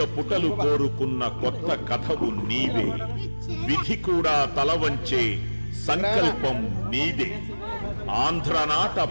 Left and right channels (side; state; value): both; inverted; correlation -1.00